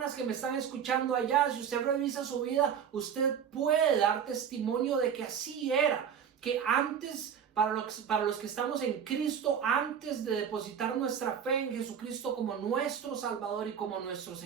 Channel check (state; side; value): quieter; left; 7.9 dB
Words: que me están escuchando allá, si usted revisa su vida, usted puede dar testimonio de que así era, que antes, para los que estamos en Cristo, antes de depositar nuestra fe en Jesucristo como nuestro Salvador y como nuestro